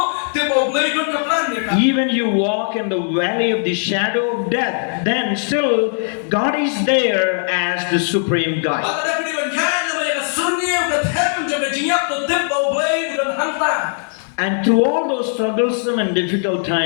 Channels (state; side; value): silent; right; digital silence